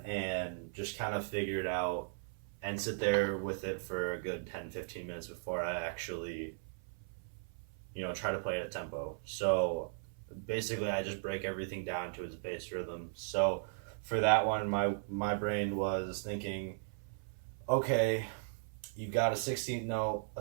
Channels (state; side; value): silent; left; 53 dB below the other